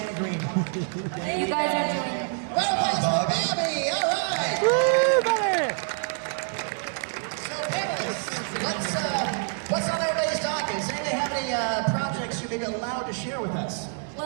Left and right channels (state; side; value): silent; left; 61 dB below the other